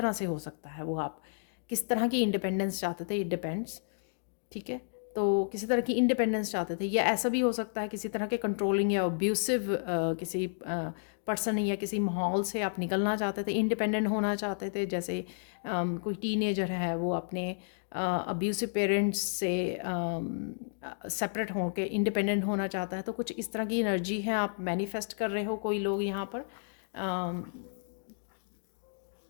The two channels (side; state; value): right; silent; digital silence